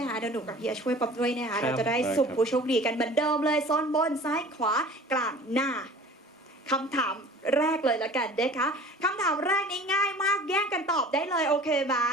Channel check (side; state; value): both; normal; correlation 0.44